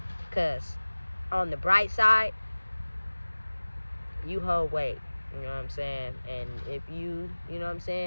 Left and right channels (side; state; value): both; inverted; correlation -1.00